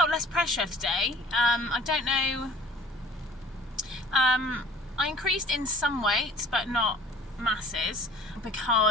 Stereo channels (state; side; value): normal; both; correlation 0.50